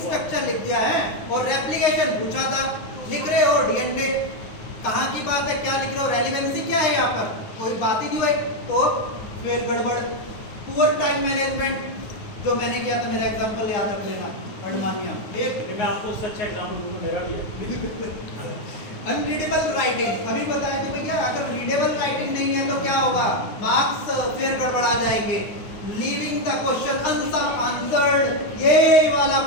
लिख दिया है और रेप्लिकेशन पूछा था, लिख रहे हो डीएनए, कहाँ की बात है, क्या लिख रहे हो, रेलेवेंसी क्या है यहाँ पर, कोई बात ही नहीं हुई, तो फिर गड़बड़। पुअर टाइम मैनेजमेंट जो मैंने किया था, मेरा एग्जांपल याद रख लेना, अडमानिया, ठीक। मैं आपको उससे अच्छा एग्जाम्पल दूंगा, मेरा भी है। अनरीडेबल राइटिंग, अभी बताया कि भैया अगर रीडेबल राइटिंग नहीं है तो क्या होगा, मार्क्स फिर गड़बड़ा जाएंगे। लीविंग द क्वेश्चन आंसर्ड, ये वाला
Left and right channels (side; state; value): right; late; 9.5 ms